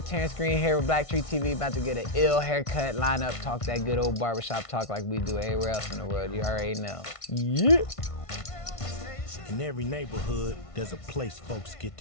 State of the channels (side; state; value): right; late; 1.5 ms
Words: Green here with Black Tree TV. About to get an ill haircut, line up, talk that good old barbershop talk like we do everywhere else in the world. You already know. Yeah. In every neighborhood, there's a place folks get